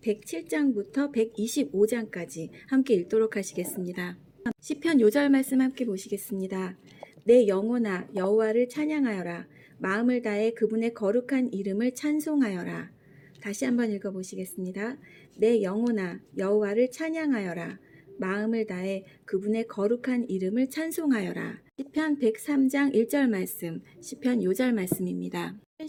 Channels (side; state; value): both; identical; correlation 1.00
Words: 107장부터 125장까지 함께 읽도록 하시겠습니다. 시편 요절 말씀 함께 보시겠습니다. 내 영혼아 여호와를 찬양하여라. 마음을 다해 그분의 거룩한 이름을 찬송하여라. 다시 한번 읽어보시겠습니다. 내 영혼아 여호와를 찬양하여라. 마음을 다해 그분의 거룩한 이름을 찬송하여라. 시편 103장 1절 말씀, 시편 요절 말씀입니다.